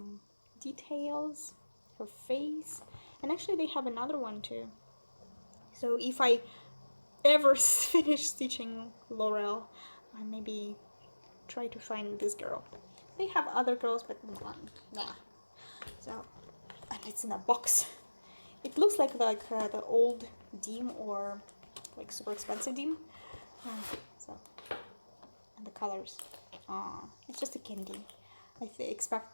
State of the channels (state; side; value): inverted; both; correlation -1.00